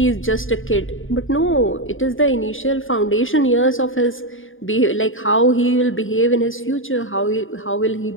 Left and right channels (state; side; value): late; right; 0.58 ms